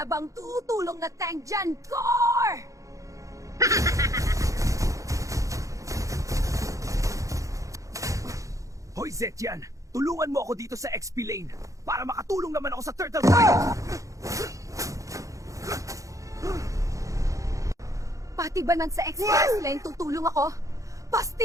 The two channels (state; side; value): late; left; 0.16 ms